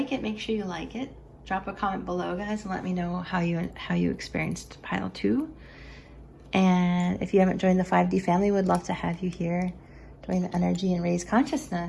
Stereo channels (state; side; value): identical; both; correlation 1.00